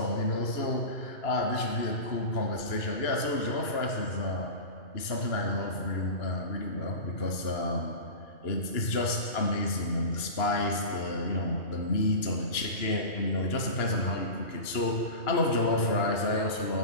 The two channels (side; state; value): right; late; 2.9 ms